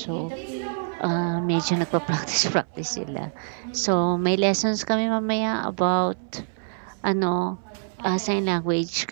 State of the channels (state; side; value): silent; left; 59 dB below the other